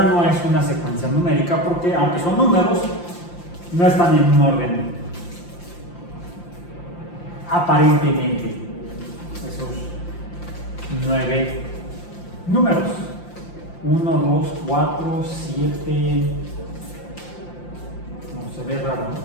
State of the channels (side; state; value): right; late; 5.8 ms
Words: no es una secuencia numérica porque, aunque son números, no están en un orden aparentemente. Esos 9 números. 1, 2, 4, 7. No se ve raro,